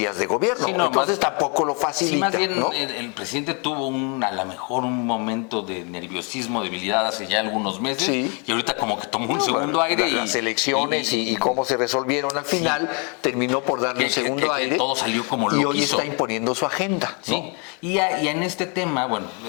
de gobierno. Entonces tampoco lo facilita. Más bien, ¿no? el presidente tuvo a lo mejor un momento de nerviosismo, debilidad hace ya algunos meses, y ahorita como que tomó un segundo aire. Las elecciones y cómo se resolvieron al final, terminó por darle un segundo aire. Todo salió como lo y hoy quiso. está imponiendo su agenda, ¿no? Sí. Y en este tema, bueno...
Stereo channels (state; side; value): quieter; right; 35.2 dB